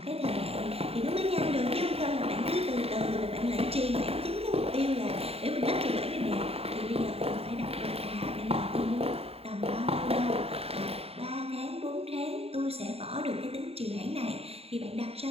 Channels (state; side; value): late; left; 0.29 ms